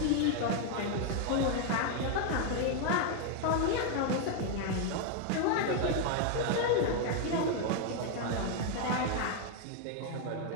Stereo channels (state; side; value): different; both; correlation 0.00